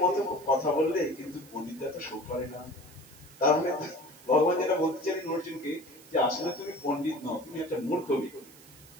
মতো কথা বললে, কিন্তু পণ্ডিতরা তো শোক করে না। তার মানে ভগবান যেটা বলতে চাইলেন অর্জুনকে, যে আসলে তুমি পণ্ডিত নও, তুমি একটা মূর্খ ব্যক্তি।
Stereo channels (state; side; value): noise; right; hiss, 22 dB below the sound